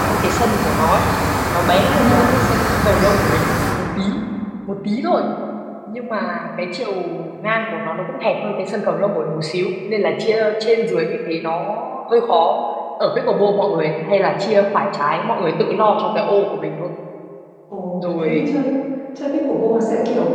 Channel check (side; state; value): both; identical; correlation 1.00